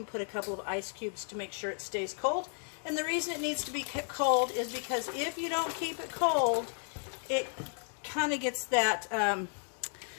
put a couple of ice cubes to make sure it stays cold. And the reason it needs to be kept cold is because if you don't keep it cold, it kind of gets that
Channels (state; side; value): silent; right; 55 dB below the other